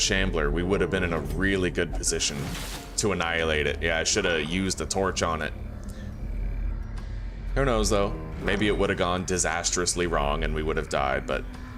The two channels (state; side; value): identical; both; correlation 1.00